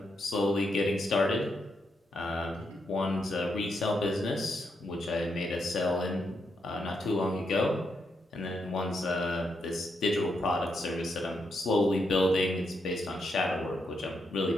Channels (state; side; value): normal; both; correlation 0.81